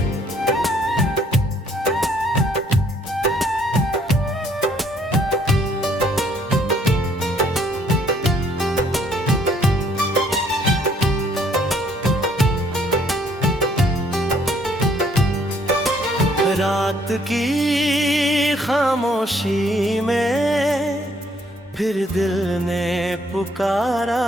रात की खामोशी में फिर दिल ने पुकारा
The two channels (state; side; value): normal; both; correlation 0.64